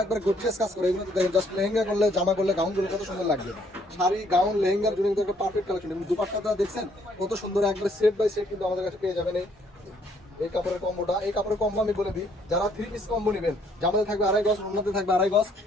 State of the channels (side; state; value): both; normal; correlation 0.66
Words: একবার গর্জিয়াস কাজ করে। এগুলো দেখেন জাস্ট লেহেঙ্গা করলে, জামা করলে, গাউন করলে কত সুন্দর লাগবে। শাড়ি, গাউন, লেহেঙ্গার জন্য কিন্তু একটা পারফেক্ট কালেকশন। এবং দুপাট্টাটা দেখছেন কত সুন্দর, একবার সেট বাই সেট কিন্তু আমাদের কাছে পেয়ে যাবেন। এই কাপড়ের কম্বোটা, এই কাপড়ের কম্বো আমি বলে দিই, যারা 3 পিস কম্বো নেবেন, জামাতে থাকবে 2.5 গজ, ওড়নাতে থাকবে 2.5 গজ